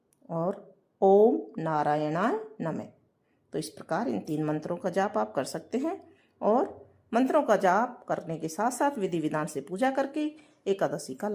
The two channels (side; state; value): both; identical; correlation 1.00